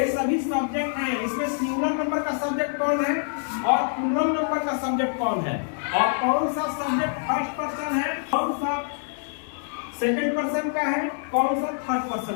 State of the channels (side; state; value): right; silent; 61 dB below the other